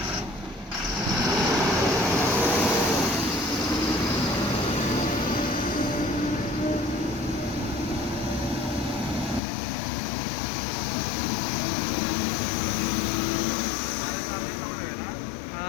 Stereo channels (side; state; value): right; drops out; at 9.4 s